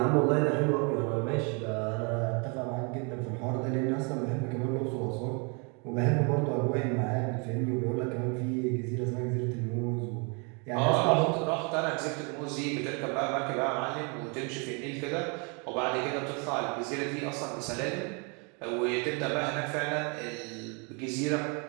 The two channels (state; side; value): quieter; left; 34.1 dB